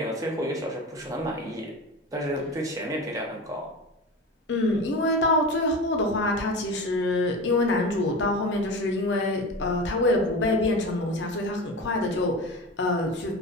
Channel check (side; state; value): both; normal; correlation 0.29